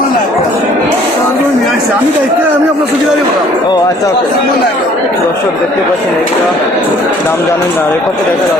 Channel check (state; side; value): normal; both; correlation 0.57